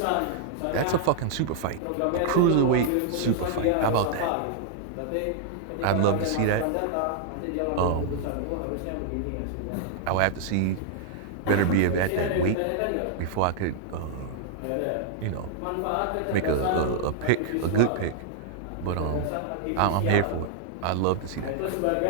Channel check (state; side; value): different; both; correlation -0.01